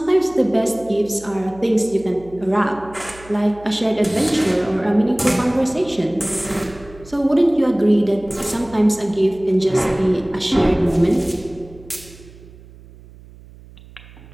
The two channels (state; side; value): noise; right; hum, 21 dB below the sound